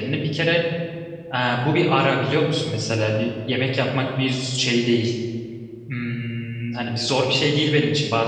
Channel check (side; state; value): both; identical; correlation 1.00